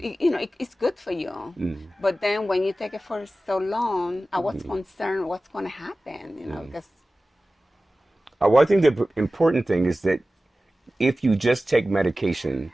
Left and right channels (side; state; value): both; normal; correlation 0.96